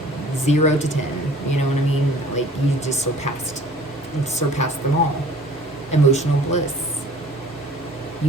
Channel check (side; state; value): both; normal; correlation 0.49